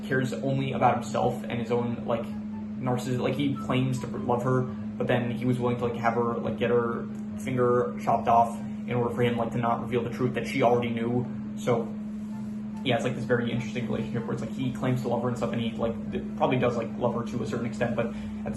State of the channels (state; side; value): identical; both; correlation 1.00